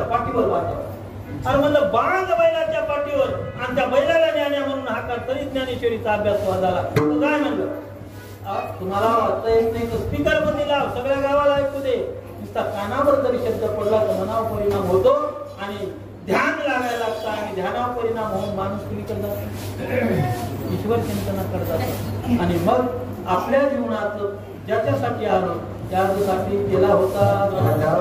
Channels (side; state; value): both; identical; correlation 1.00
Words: पाठीवर वाचावं. अरे म्हणलं बांध बैलाच्या पाठीवर आणि त्या बैलाला ज्ञान्या म्हणून हाका तरी ज्ञानेश्वरीचा अभ्यास झाला. काय म्हणलं तुम्हाला वाचता येत नाही तर स्पीकर मध्ये लाव, सगळ्या गावाला ऐकू दे. नुसता कानावर जरी शब्द पडला तर मनावर परिणाम होतो आणि ध्यान लागायला लागतं आणि ध्यानावर परिणाम होऊन माणूस तुम्ही करतात ईश्वर चिंतना करतात. आणि मग आपल्या जीवनात ज्याच्यासाठी आलो त्यासाठी केला होता